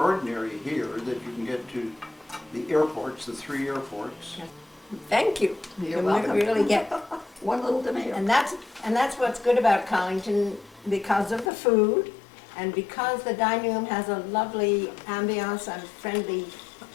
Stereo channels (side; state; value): right; drops out; at 11.5 s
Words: here that you can get to the airports, the 3 airports. Thank you. You're You welcome. really get, One little tomato. and that's what's good about Collington, because of the food, and because the dining room has a lovely ambiance and friendly